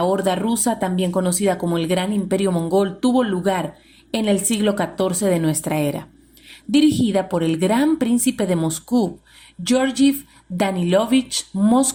Horda rusa, también conocida como el Gran Imperio Mongol, tuvo lugar en el siglo XIV de nuestra era, dirigida por el Gran Príncipe de Moscú, Georgiev Danilovich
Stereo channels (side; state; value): both; identical; correlation 1.00